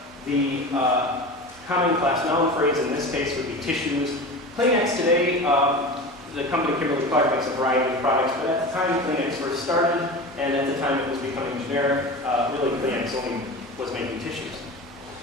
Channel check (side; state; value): both; normal; correlation 0.30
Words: The common class noun phrase in this case would be tissues. Kleenex today, the company Kimberly-Clark makes a variety of products, but at the time Kleenex first started, and at the time it was becoming generic, really Kleenex only was making tissues.